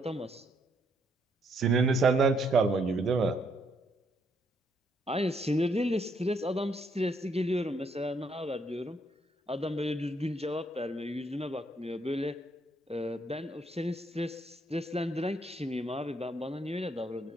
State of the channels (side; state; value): both; normal; correlation 0.72